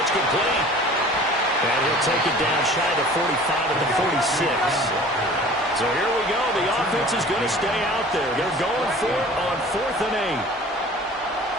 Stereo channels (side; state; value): both; normal; correlation 0.45